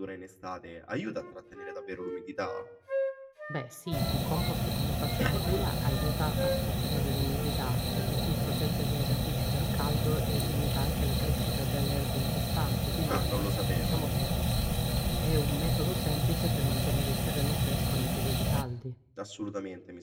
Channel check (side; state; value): both; identical; correlation 1.00